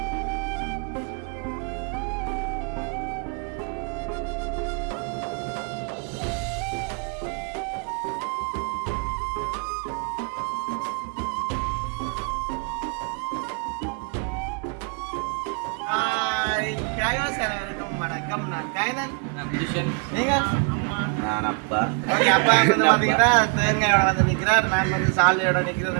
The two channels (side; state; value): left; quieter; 36.2 dB